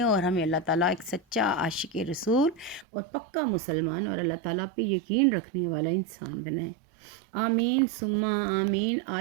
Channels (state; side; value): drops out; left; at 2.9 s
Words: اور ہمیں اللہ تعالیٰ ایک سچا عاشق رسول اور پکا مسلمان اور اللہ تعالیٰ پہ یقین رکھنے والا انسان بنائیں۔ آمین ثم آمین۔